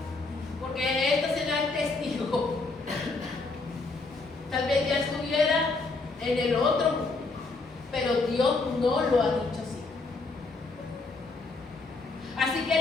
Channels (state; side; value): quieter; right; 3.7 dB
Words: Porque esto será el testigo. Tal vez ya estuviera en el otro, pero Dios no lo ha dicho así. Así que